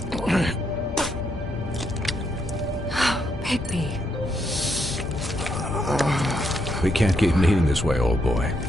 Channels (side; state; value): both; normal; correlation 0.78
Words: Bigby. We can't keep meeting this way, old boy.